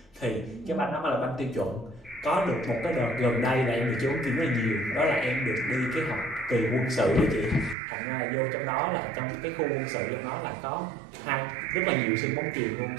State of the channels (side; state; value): left; drops out; at 7.8 s